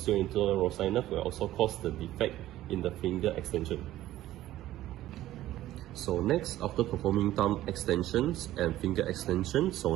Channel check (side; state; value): left; quieter; 14.5 dB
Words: interosseous nerve, will also cause the defect in the finger extension. So next, after performing thumb extensions and finger extension, so